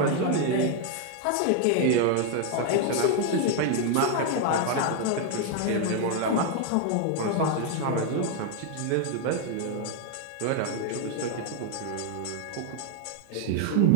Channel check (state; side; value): different; both; correlation 0.00